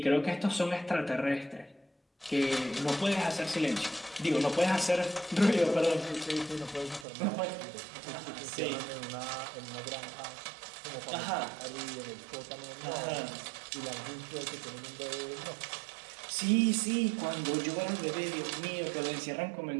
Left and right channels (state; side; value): drops out; left; at 7.1 s